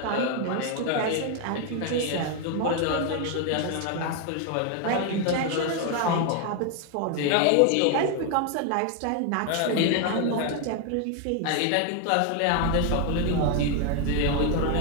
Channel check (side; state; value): both; different; correlation 0.01